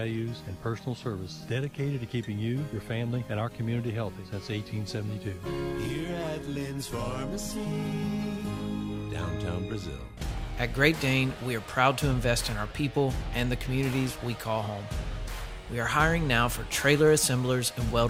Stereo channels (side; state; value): both; identical; correlation 1.00